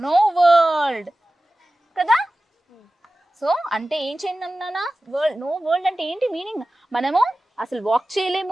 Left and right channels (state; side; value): normal; both; correlation 0.96